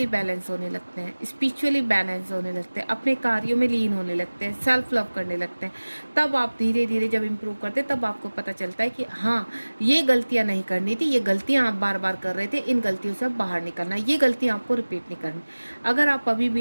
बैलेंस होने लगते हैं, स्पिरिचुअली बैलेंस होने लगते हैं, अपने कार्यों में लीन होने लगते हैं, सेल्फ लव करने लगते हैं। तब आप धीरे धीरे जब इम्प्रूव करते हैं तब आपको पता चलता है कि हाँ ये गलतियां नहीं करनी थी, ये गलतियां आप बार बार कर रहे थे, इन गलतियों से बाहर निकलना, ये गलतियां आपको रिपीट नहीं करनी। अगर आप अभी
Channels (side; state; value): both; inverted; correlation -1.00